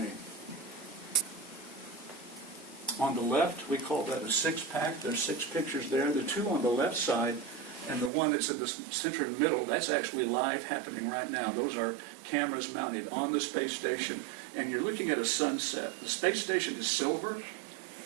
On the left, we call that a six-pack. There's 6 pictures there. The 2 on the left side and the one that's in the center middle, that's actually live happening right now. Those are cameras mounted on the space station, and you're looking at a sunset. The space station is silver,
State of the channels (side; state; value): left; drops out; at 8.1 s